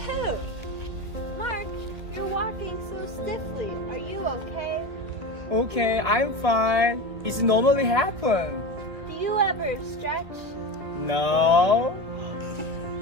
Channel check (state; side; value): late; left; 1.8 ms